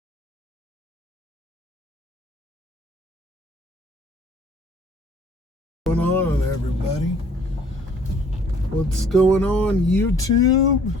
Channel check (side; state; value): both; normal; correlation 0.57